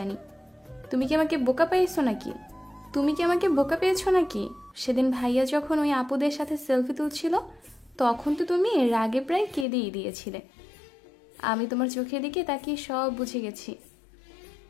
তুমি কি আমাকে বোকা পেয়েছো নাকি? সেদিন ভাইয়া যখন ওই আপুদের সাথে সেলফি তুলছিল তখন তো তুমি রাগে প্রায় কেঁদেই দিয়েছিলে। আমি তোমার চোখের দিকে তাকিয়ে সব বুঝে গেছি।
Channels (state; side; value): drops out; right; at 9.7 s